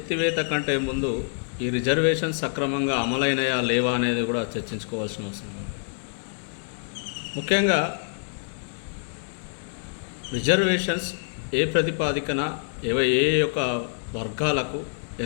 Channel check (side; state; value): right; silent; digital silence